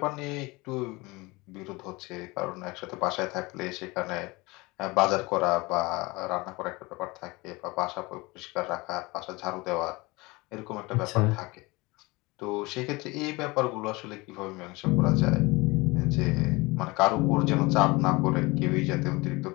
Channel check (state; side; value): quieter; right; 23.7 dB